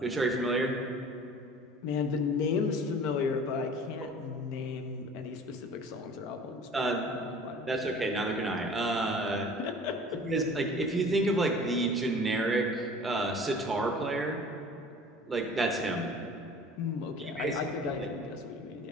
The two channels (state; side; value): normal; both; correlation 0.45